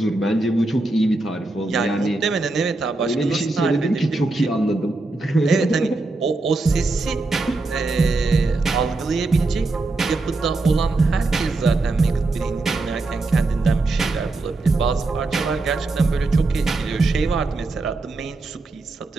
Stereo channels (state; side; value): quieter; left; 3.2 dB